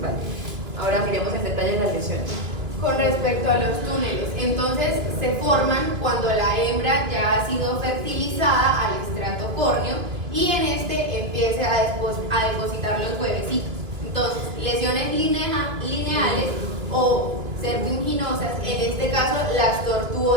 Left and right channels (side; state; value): left; late; 2.4 ms